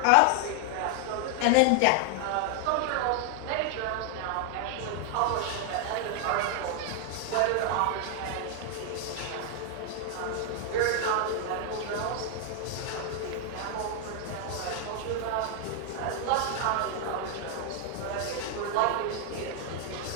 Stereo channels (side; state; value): both; different; correlation 0.00